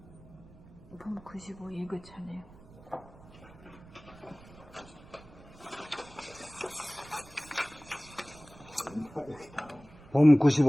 봄 95 예고차네요. 봄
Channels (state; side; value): noise; right; rumble, 21 dB below the sound